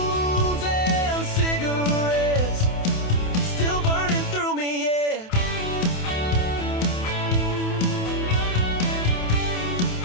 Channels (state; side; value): late; right; 27 ms